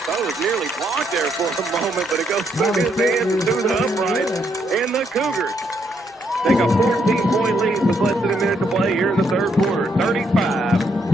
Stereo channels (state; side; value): normal; both; correlation 0.75